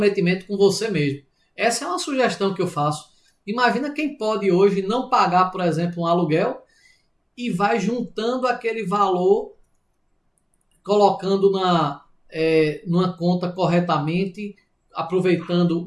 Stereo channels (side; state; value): both; identical; correlation 1.00